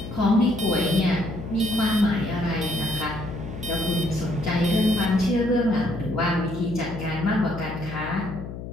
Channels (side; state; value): left; noise; hum, 9 dB below the sound